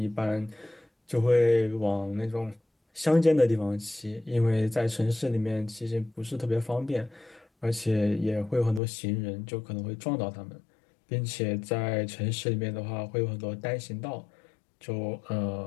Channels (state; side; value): drops out; right; at 8.8 s